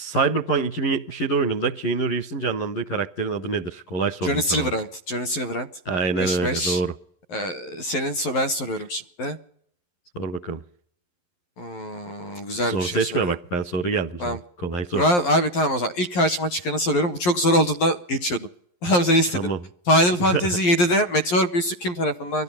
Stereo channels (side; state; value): right; late; 11 ms